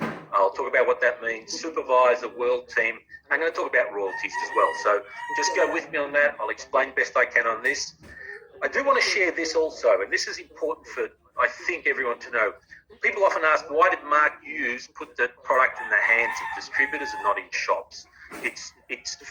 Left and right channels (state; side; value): identical; both; correlation 1.00